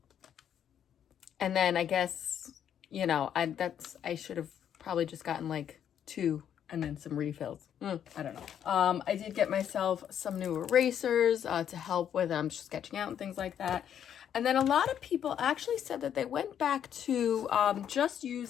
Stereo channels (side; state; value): right; quieter; 9.3 dB